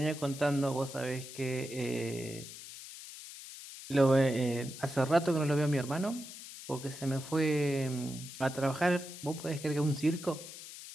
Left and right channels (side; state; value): left; noise; hiss, 13 dB below the sound